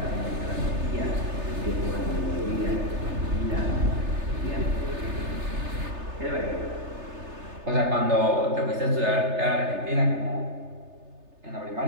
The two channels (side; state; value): left; late; 3.3 ms